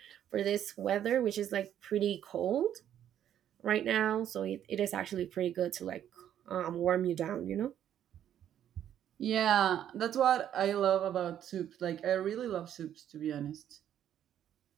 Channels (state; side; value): quieter; left; 10.4 dB